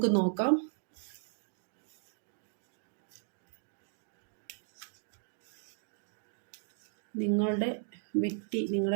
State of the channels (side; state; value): left; silent; digital silence